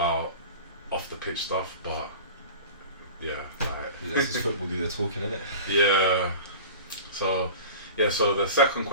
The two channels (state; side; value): inverted; both; correlation -0.36